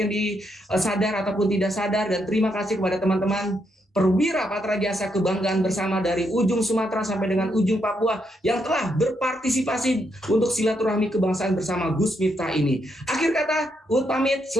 yang disadar ataupun tidak sadar. Dan terima kasih kepada teman-teman Perwira Patra Jasa kebanggaan bersama dari ujung Sumatera sampai dengan ujung Papua yang telah berpartisipasi untuk silaturahmi kebangsaan bersama Gus Miftah ini. Akhir kata, Uut pamit,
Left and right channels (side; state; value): both; normal; correlation 0.78